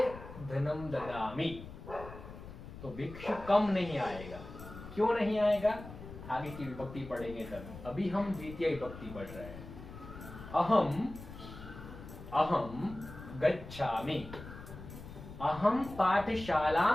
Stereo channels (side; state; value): left; noise; rumble, 13 dB below the sound